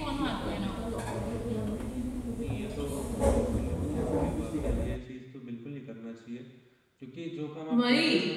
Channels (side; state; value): both; identical; correlation 1.00